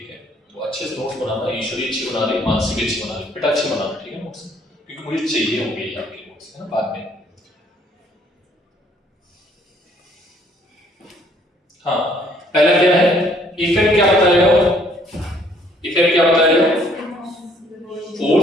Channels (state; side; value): normal; both; correlation 0.63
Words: है, तो अच्छे से नोट्स बनाना, ईश्वरी अच्छी बना रही, मानसी अच्छी बना रही, बेटा अच्छी बनाना। ठीक है, नोट्स, क्योंकि मुझे चाहिए होंगे ये आपके नोट्स, है ना, बाद में। हाँ, पहला क्या है? इफेक्ट क्या बताएगा?